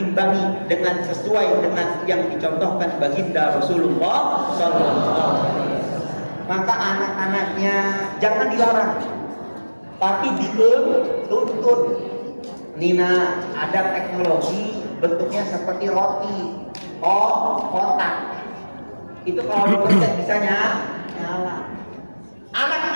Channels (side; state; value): both; inverted; correlation -1.00